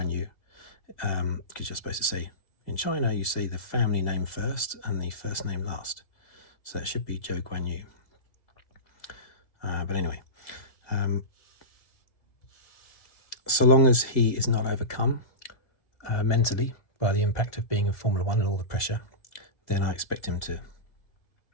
Yu, because you're supposed to say, in China, you say the family name first and the first name last. So it should be Zhou Guan Yu. But anyway, so long as he is not overcome mentally by the impact of being in Formula 1 and all the pressure, then I expect him to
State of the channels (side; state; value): right; late; 1.9 ms